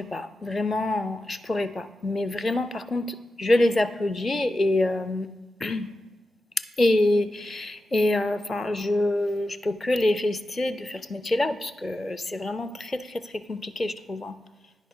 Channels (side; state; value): both; normal; correlation 0.91